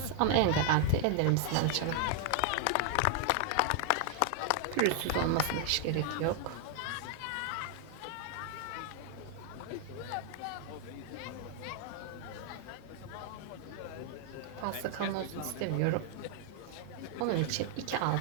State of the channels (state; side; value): different; both; correlation 0.00